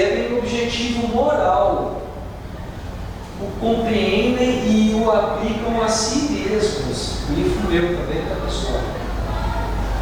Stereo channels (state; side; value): identical; both; correlation 1.00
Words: o objetivo moral, o compreendem e o aplicam a si mesmos. O livro meu também está, pessoal.